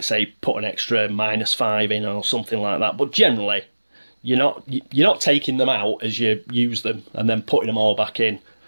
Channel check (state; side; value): inverted; both; correlation -1.00